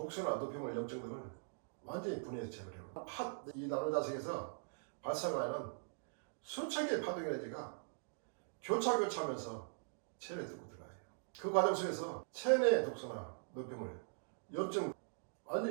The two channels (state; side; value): silent; left; digital silence